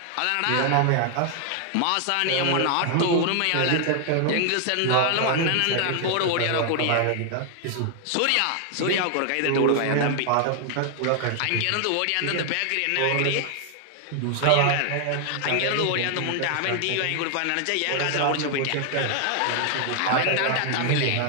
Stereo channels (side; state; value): both; different; correlation 0.00